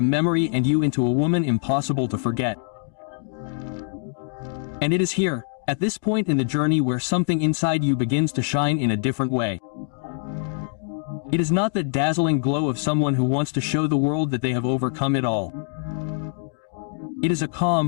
memory and you into a woman impossible to forget. And it is here, at this point in the journey, where something inside you begins to shine in a different way. It is not that dazzling glow of someone who wants to show the world that they have overcome it all. It is a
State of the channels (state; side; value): silent; right; 55 dB below the other